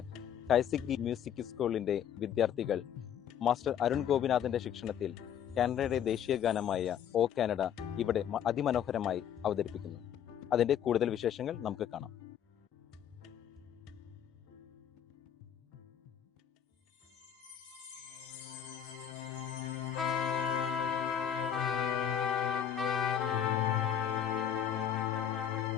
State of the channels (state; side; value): quieter; right; 9.3 dB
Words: കൈസിക്കി മ്യൂസിക് സ്കൂളിന്റെ വിദ്യാർത്ഥികൾ മാസ്റ്റർ അരുൺ ഗോപിനാഥിന്റെ ശിക്ഷണത്തിൽ കാനഡയുടെ ദേശീയ ഗാനമായ ഓ കാനഡ ഇവിടെ അതിമനോഹരമായി അവതരിപ്പിക്കുന്നു. അതിന്റെ കൂടുതൽ വിശേഷങ്ങൾ നമുക്ക് കാണാം.